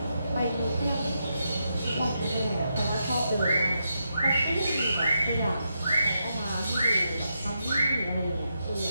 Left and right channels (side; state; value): both; inverted; correlation -0.84